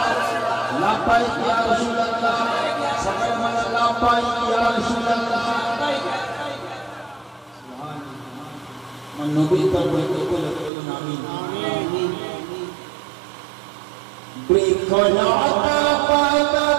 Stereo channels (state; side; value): drops out; left; at 10.7 s